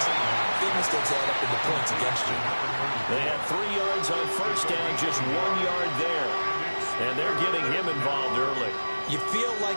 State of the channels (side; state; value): both; inverted; correlation -1.00